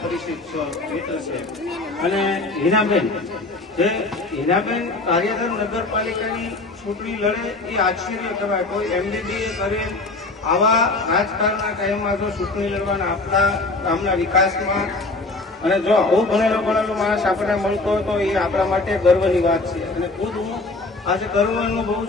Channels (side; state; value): right; quieter; 3.3 dB